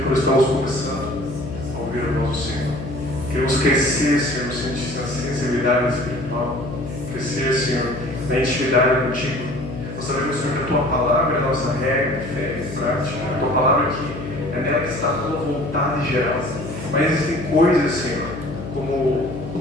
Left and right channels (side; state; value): left; noise; hum, 9 dB below the sound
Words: quando estamos começando a ouvir a voz do Senhor. Queremos crescer, Senhor, no sentido da sensibilidade espiritual, crescer, Senhor, na intimidade contigo. Nós sabemos, Senhor, que a Tua palavra é a nossa regra de fé e prática. A Tua palavra aqui é nela que está a Tua vontade geral. Mas existem coisas, Senhor, como o